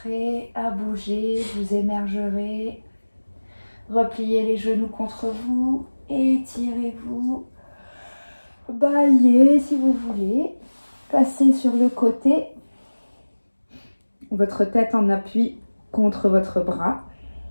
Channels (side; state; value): both; inverted; correlation -1.00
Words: à bouger, vous émergerez, repliez les genoux contre vous, étirez-vous, baillez si vous voulez, passez sur le côté, votre tête en appui contre votre bras.